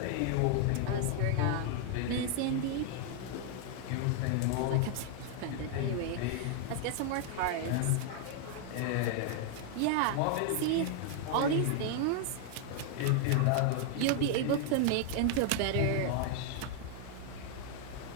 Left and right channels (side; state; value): both; different; correlation 0.00